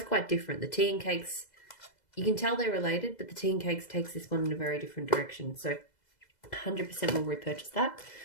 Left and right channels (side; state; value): right; late; 2.0 ms